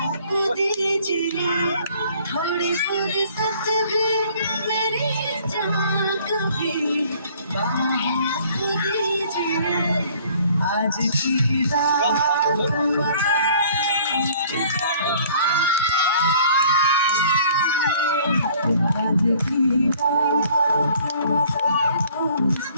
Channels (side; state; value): both; inverted; correlation -0.56